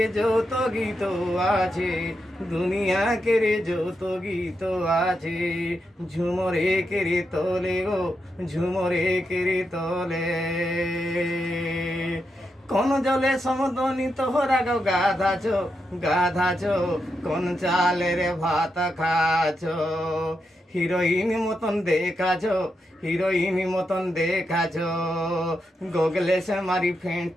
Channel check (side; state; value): both; normal; correlation 0.85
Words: যত গীত আছে, দুনিয়াকের যত গীত আছে, ঝুমরে কেরে তোলে গো, ঝুমরে কেরে তোলে। কোন জলে সমদনি তোহরা গো গাধাছ, গাধাছ, কোন চালের ভাত খাছ। হিরোইন মতন দেখাছ, হিরোইন মতন দেখাছ, গোগলে সে মারি